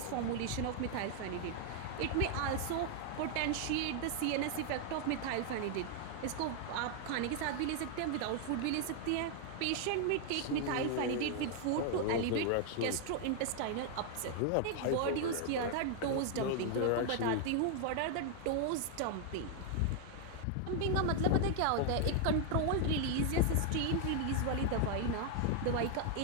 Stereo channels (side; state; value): both; different; correlation 0.00